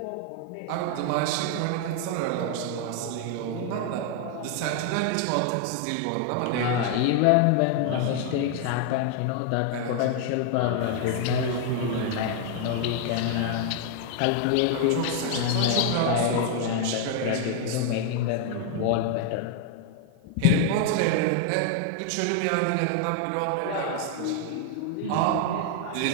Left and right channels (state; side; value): different; both; correlation 0.00